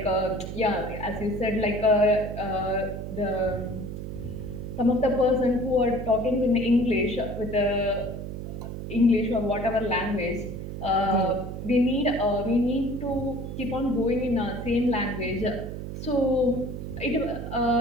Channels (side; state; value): right; noise; hum, 7 dB below the sound